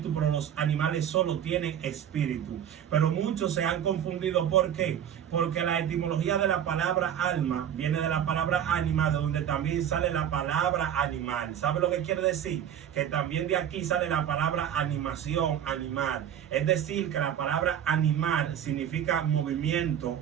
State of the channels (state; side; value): quieter; left; 9.6 dB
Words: pero los animales solo tienen espíritu. Pero muchos se han confundido. ¿Por qué? Porque la etimología de la palabra alma viene de la palabra ánima, de donde también sale la palabra animal. ¿Sabe lo que quiere decir? Que también de aquí sale la palabra animación, animal. Es decir, que la palabra animal significa movimiento